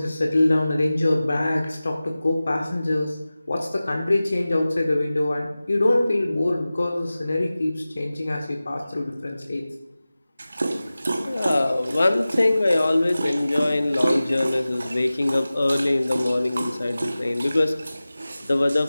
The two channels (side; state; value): both; inverted; correlation -0.97